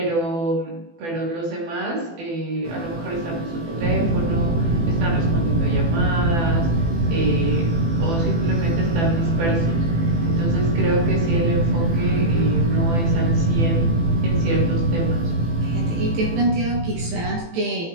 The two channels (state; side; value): late; left; 18 ms